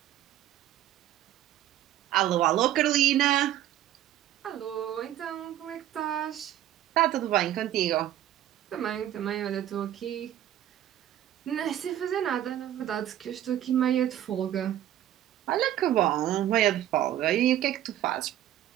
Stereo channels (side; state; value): left; quieter; 12.3 dB